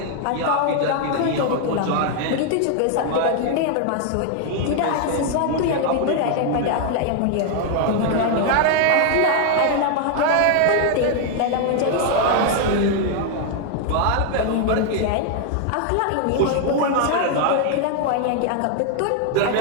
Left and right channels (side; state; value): both; different; correlation 0.00